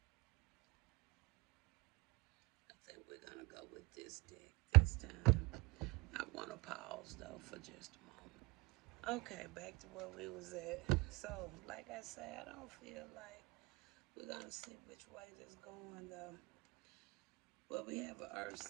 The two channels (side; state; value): left; quieter; 25.2 dB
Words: I think we're going to go with this deck this time. I want to pause though for just a moment. Okay, back to where we was at. So, like I said, I don't feel like we're gonna see which way this going though. Well, we have an earth